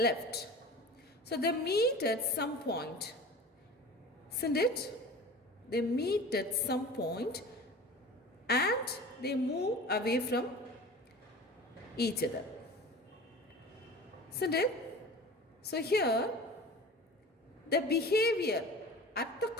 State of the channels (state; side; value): normal; both; correlation 0.38